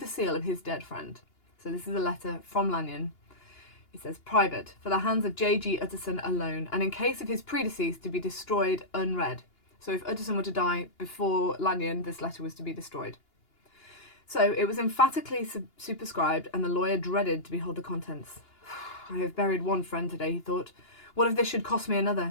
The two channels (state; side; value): late; right; 2.8 ms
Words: seal of his dead friend. So this is a letter from Lanyon. It says, private, for the hands of J.G. Utterson alone, and in case of his predeceased to be destroyed unread. So if Utterson were to die before Lanyon, this letter was to be destroyed. So it was emphatically superscribed, and the lawyer dreaded to behold the contents. I have buried one friend today, he thought. What if this should cost me